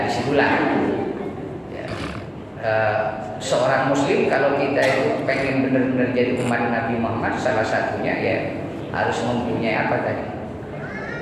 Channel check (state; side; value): identical; both; correlation 1.00